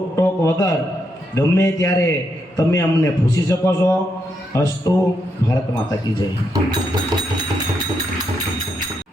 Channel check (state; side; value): normal; both; correlation 0.80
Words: વગર ગમે ત્યારે તમે અમને પૂછી શકો છો. અસ્તુ. ભારત માતા કી જય.